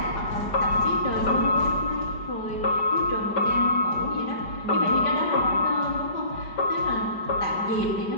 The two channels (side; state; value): right; late; 5.0 ms